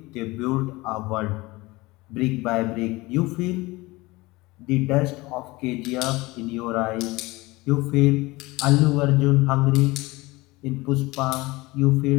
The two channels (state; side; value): quieter; right; 21.7 dB